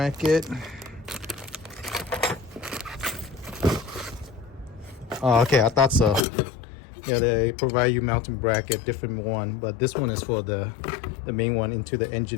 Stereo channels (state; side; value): drops out; right; at 6.2 s